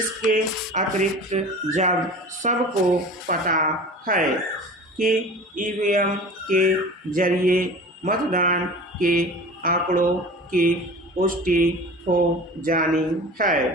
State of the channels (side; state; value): both; normal; correlation 0.38